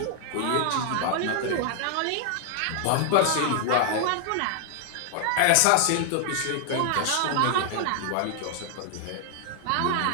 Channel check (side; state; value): both; different; correlation 0.00